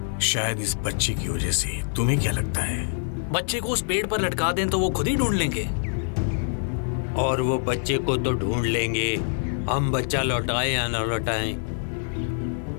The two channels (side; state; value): right; silent; 62 dB below the other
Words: शायद इस बच्चे की वजह से। तुम्हें क्या लगता है? बच्चे को उस पेड़ पर लटका दें तो वो खुद ही ढूंढ लेंगे। और वो बच्चे को तो ढूंढ लेंगे, हम बच्चा लौटाए या न लौटाएं,